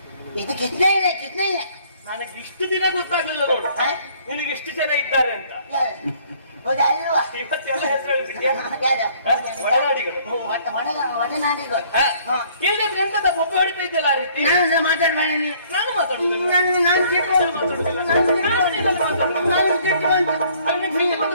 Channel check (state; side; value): inverted; both; correlation -0.60